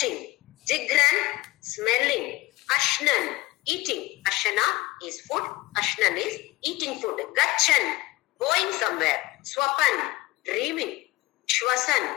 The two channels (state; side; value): quieter; right; 19.7 dB